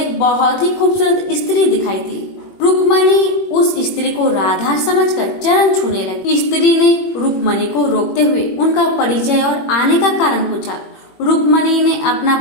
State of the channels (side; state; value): right; late; 22 ms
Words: बहुत ही खूबसूरत स्त्री दिखाई दी। रुक्मणी उस स्त्री को राधा समझकर चरण छूने लगी। स्त्री ने रुक्मणी को रोकते हुए उनका परिचय और आने का कारण पूछा। रुक्मणी ने अपना